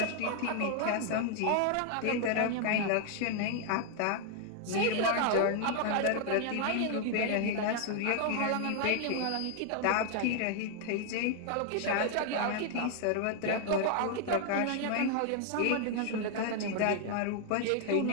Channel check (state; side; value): different; both; correlation 0.00